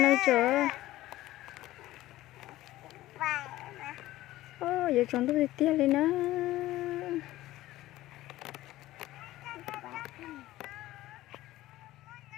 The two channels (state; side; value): quieter; right; 16.0 dB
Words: chờ giờ chọn tôi đi tia lên nữa.